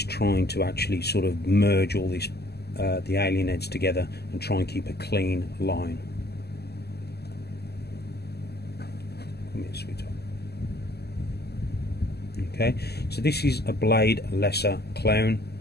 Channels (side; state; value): right; late; 0.47 ms